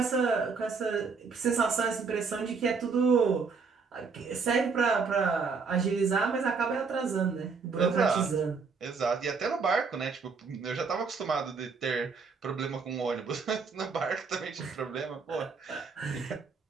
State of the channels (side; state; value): left; quieter; 5.0 dB